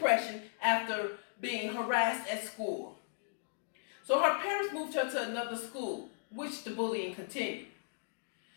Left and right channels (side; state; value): right; silent; digital silence